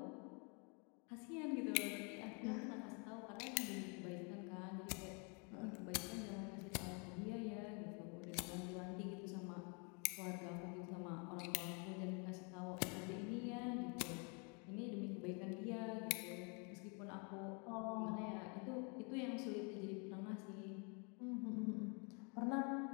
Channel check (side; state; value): right; quieter; 35.3 dB